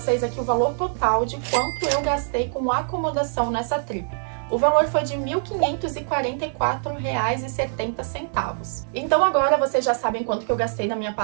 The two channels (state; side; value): silent; left; digital silence